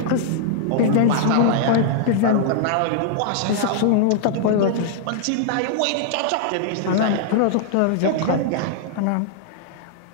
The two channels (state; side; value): different; both; correlation -0.01